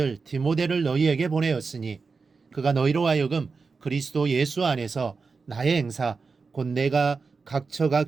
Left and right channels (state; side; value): quieter; left; 4.7 dB